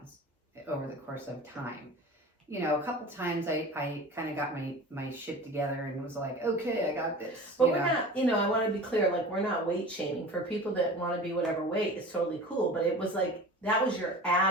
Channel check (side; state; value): both; normal; correlation 0.37